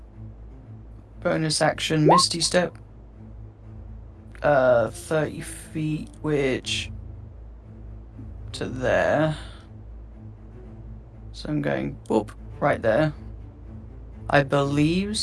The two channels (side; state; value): both; identical; correlation 1.00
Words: bonus action Misty Step. 30 feet, which to there. So I'm going whoop right there. I believe